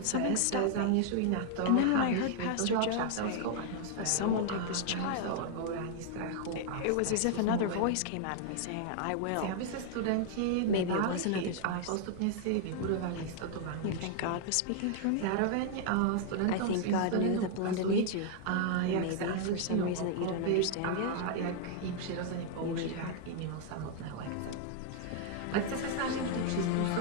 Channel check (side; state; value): both; different; correlation 0.00